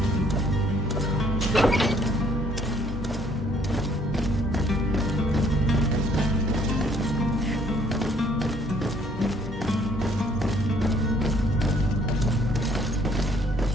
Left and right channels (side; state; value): both; normal; correlation 0.63